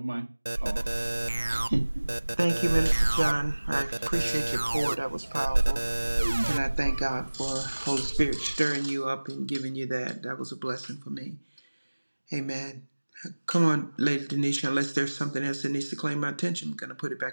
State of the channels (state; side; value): inverted; both; correlation -1.00